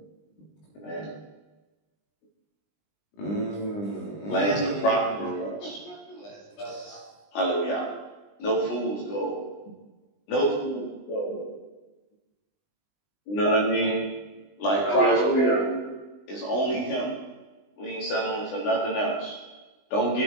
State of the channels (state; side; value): late; right; 20 ms